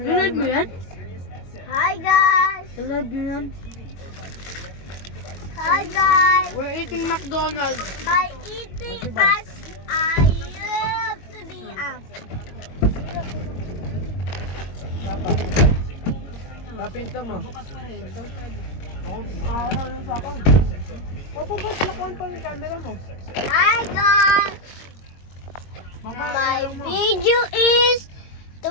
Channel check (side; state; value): right; late; 22 ms